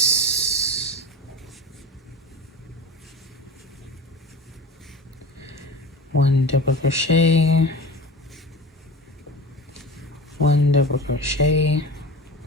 One double crochet, 1 double crochet,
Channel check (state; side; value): normal; both; correlation 0.32